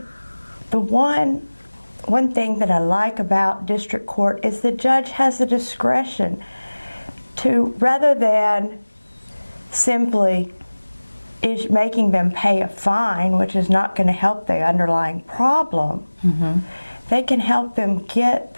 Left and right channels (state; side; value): inverted; both; correlation -1.00